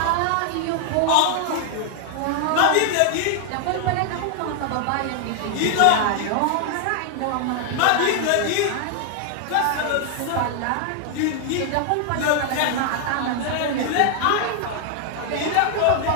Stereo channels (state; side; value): different; both; correlation 0.00